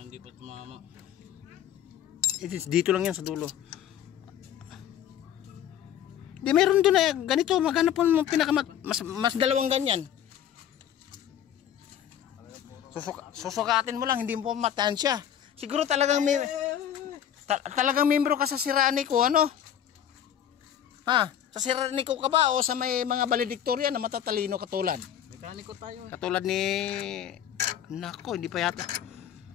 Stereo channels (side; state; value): right; quieter; 10.1 dB